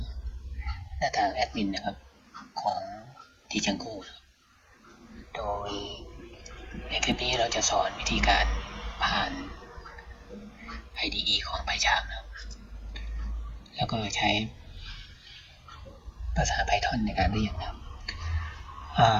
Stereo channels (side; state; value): both; identical; correlation 1.00